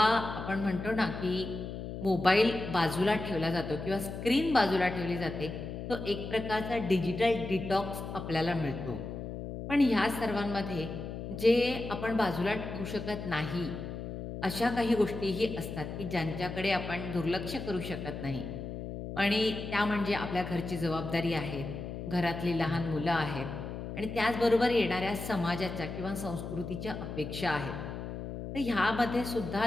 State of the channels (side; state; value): left; noise; hum, 7 dB below the sound